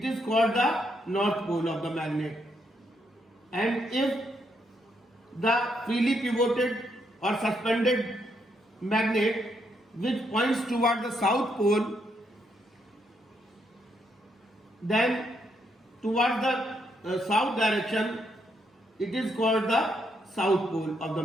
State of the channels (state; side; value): normal; both; correlation 0.77